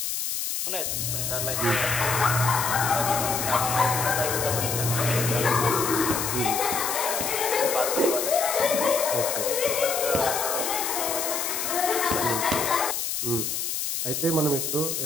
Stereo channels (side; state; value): left; noise; hiss, 2 dB below the sound